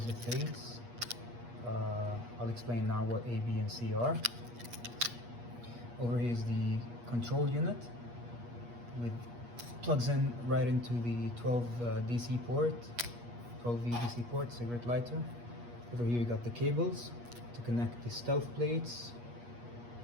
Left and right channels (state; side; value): late; left; 8.4 ms